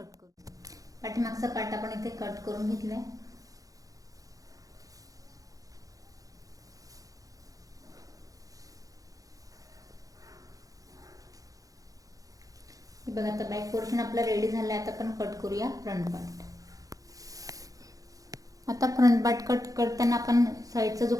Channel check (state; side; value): late; left; 0.17 ms